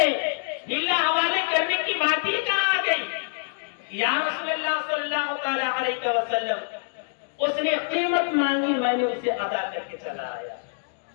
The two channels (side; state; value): right; silent; digital silence